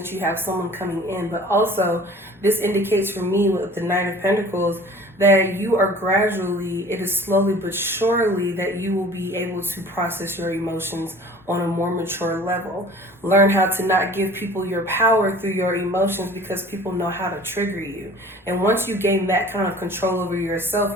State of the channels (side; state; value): both; normal; correlation 0.46